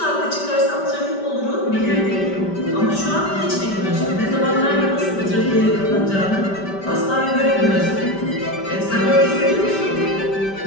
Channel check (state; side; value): late; right; 5.1 ms